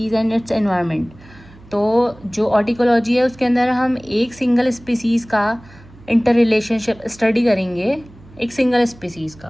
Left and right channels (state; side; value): noise; right; hum, 23 dB below the sound